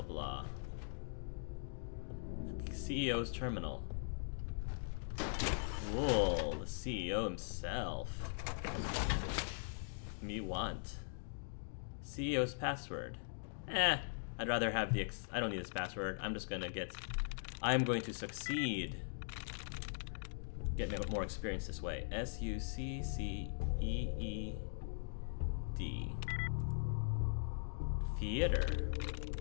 blah. CEO's terminal. Whoa, the CEO himself. Me want. CEO's password. I'd rather have the I don't need this password. I'm just gonna get... I'm going to succeed. Get more experience this way. SUCCEED. Theater.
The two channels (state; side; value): silent; right; digital silence